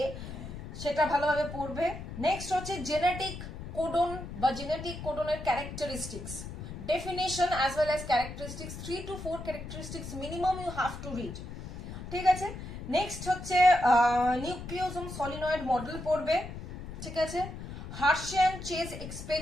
সেটা ভালোভাবে পড়বে। নেক্সট হচ্ছে জেনেটিক কোডন বা জেনেটিক কোডনের characteristics, definition as well as characteristics, 3 to 4 characteristics minimum you have to read. ঠিক আছে, নেক্সট হচ্ছে নিউক্লিওজোম সলিনয়েড মডেল পড়বে। ঠিক আছে, হার্শিয়ান চেজ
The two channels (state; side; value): noise; left; rumble, 9 dB below the sound